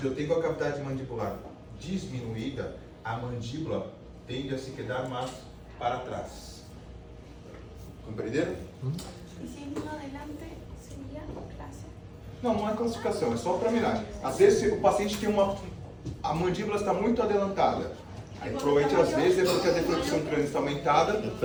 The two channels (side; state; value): both; identical; correlation 1.00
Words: eu tenho a cavidade mandibular diminuída, a mandíbula tende a se quedar mais para trás. Compreenderam? Y si hay uno adelante, sería clase. Não, não é classificação, é só para mirar. Às vezes o paciente tem a mandíbula está muito adelantada. Aí provavelmente às vezes é porque a deflexão crânio está aumentada,